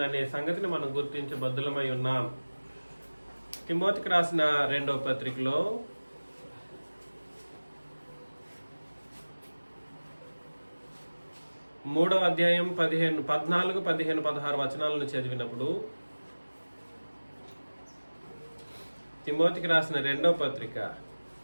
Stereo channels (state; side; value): inverted; both; correlation -1.00